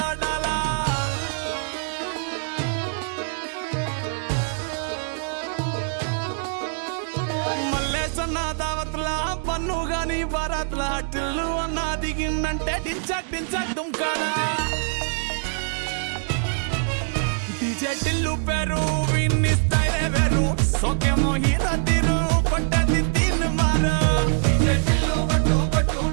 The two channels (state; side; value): silent; left; 63 dB below the other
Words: ఆడాలా మల్లేసన్న దావత్లా పన్ను గాని బారాత్లా టిల్లు అన్న దిగిందంటే టించక్ టించక్ దుంకాలా డీజే టిల్లు పేరు విన్ని స్టైలే వేరు సోకేమో హీరో తీరు కొట్టది తీన్ మారు డీజే టిల్లు కొట్టు కొట్టు